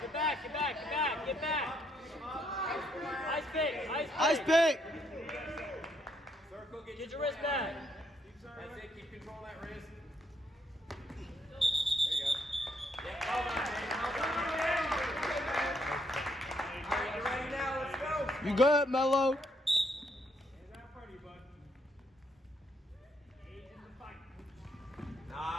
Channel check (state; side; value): normal; both; correlation 0.73